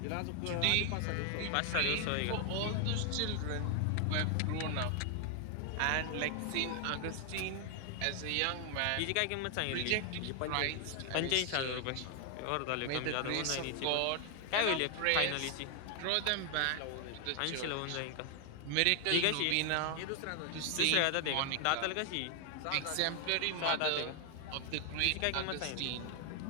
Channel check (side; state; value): both; different; correlation 0.00